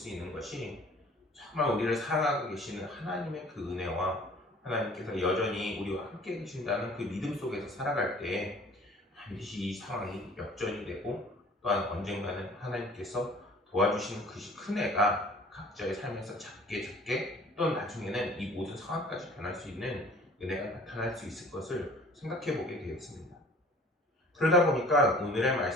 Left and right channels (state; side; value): normal; both; correlation 0.50